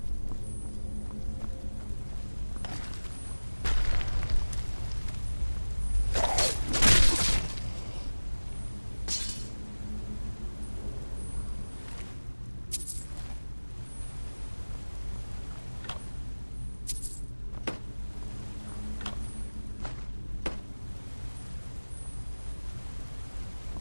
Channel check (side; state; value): both; inverted; correlation -1.00